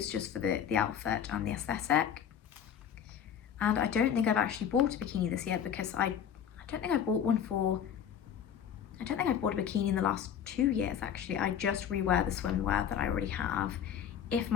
just for the outfit and the aesthetic. And I don't think I've actually bought a bikini this year, because I don't think I bought a bikini in the last 2 years actually. I just rewear the swimwear that I already have. If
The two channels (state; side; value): quieter; right; 8.6 dB